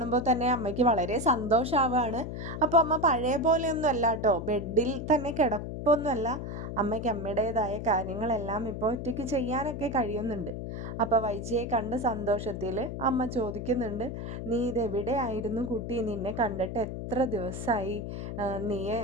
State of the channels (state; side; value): noise; left; hum, 6 dB below the sound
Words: തന്നെ അമ്മയ്ക്ക് വളരെ സന്തോഷമാവുകയാണ്. അപ്പോൾ അമ്മ പഴയ പോലെയൊന്നും അല്ല കേട്ടോ, ബെഡിൽ തന്നെ കിടപ്പൊന്നുമല്ല. അമ്മയ്ക്ക് അമ്മയുടേതായ കാര്യങ്ങളെല്ലാം ഇപ്പോൾ ഒറ്റയ്ക്ക് ചെയ്യാനൊക്കെ കഴിയുന്നുണ്ട്. അപ്പോൾ വൈജയെ കണ്ട സന്തോഷത്തിൽ അമ്മ ചോദിക്കുന്നുണ്ട്, നീ ഇതെവിടെയായിരുന്നു കുട്ടി? നിന്നെ കണ്ടിട്ട് എത്ര ദിവസമായി? നീ